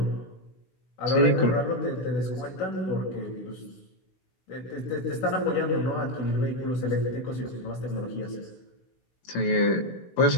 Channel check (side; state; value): right; late; 16 ms